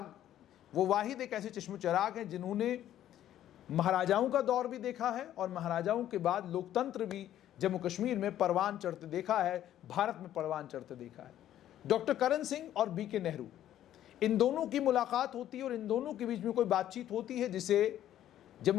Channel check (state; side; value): quieter; right; 11.9 dB